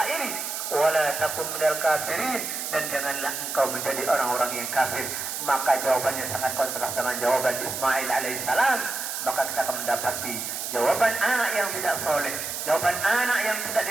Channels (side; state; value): right; noise; hiss, 4 dB below the sound